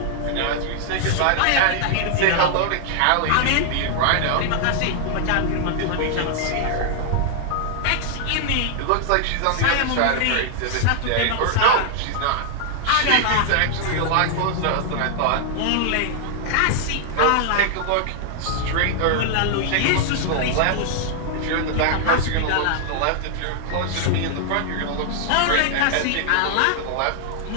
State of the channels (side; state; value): both; different; correlation 0.00